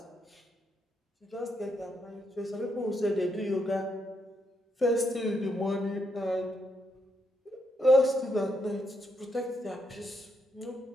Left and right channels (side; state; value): both; normal; correlation 0.79